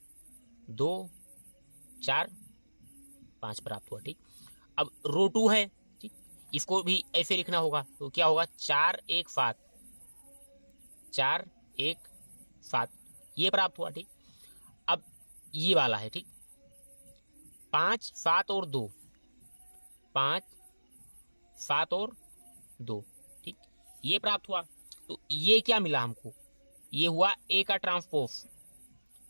2 4 5 प्राप्त हुआ, ठीक। अब रो 2 है, ठीक, इसको भी ऐसे लिखना होगा, तो क्या होगा 4 1 7, 4 1 7, ये प्राप्त हुआ, ठीक। अब ये वाला है, ठीक, 5 7 और 2, 5 7 और 2, ठीक, ये प्राप्त हुआ। तो ये क्या मिला हमको, ये हुआ ए का ट्रांसपोज,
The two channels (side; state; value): both; inverted; correlation -1.00